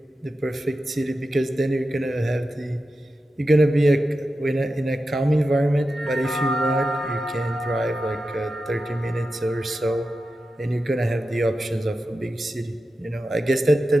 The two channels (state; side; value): normal; both; correlation 0.91